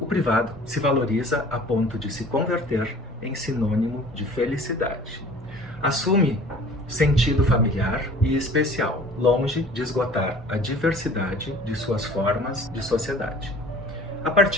privado se valoriza a ponto de se converter em sinônimo de felicidade. Assume sentido familiar e especial, longe de esgotar a diversidade de suas formas de sociedade. A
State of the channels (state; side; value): normal; both; correlation 0.47